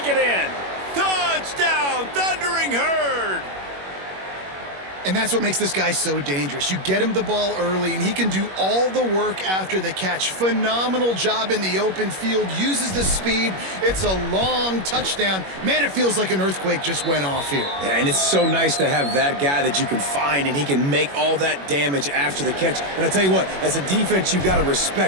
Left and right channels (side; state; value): left; late; 21 ms